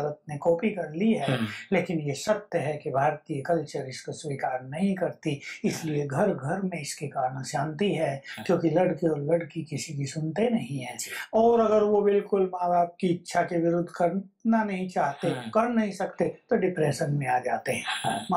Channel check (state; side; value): identical; both; correlation 1.00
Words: ने कॉपी कर ली है। लेकिन ये सत्य है कि भारतीय कल्चर इसको स्वीकार नहीं करती, इसलिए घर घर में इसके कारण शांति है, क्योंकि लड़के और लड़की किसी की सुनते नहीं है। और अगर वो बिल्कुल माँ बाप की इच्छा के विरुद्ध करना नहीं चाहते, कर नहीं सकते, तो डिप्रेशन में आ जाते हैं।